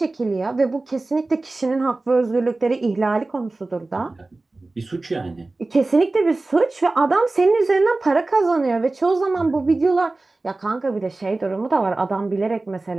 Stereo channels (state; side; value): quieter; left; 3.2 dB